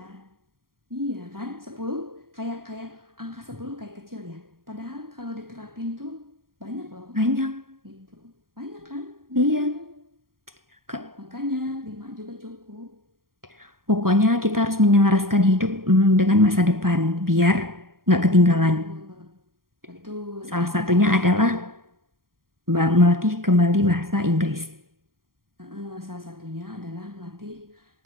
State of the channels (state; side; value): late; left; 0.92 ms